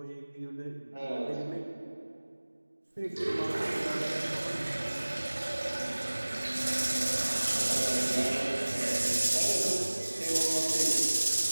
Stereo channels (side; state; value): both; inverted; correlation -1.00